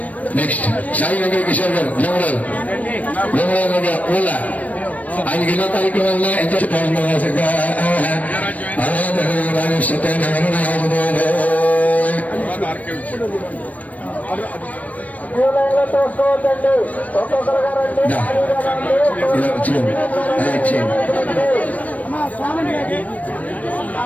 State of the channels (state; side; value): late; right; 0.070 ms